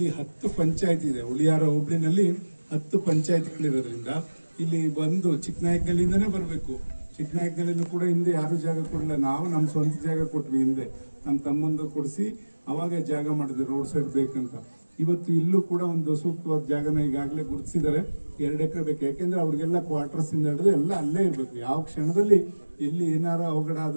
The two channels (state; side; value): inverted; both; correlation -1.00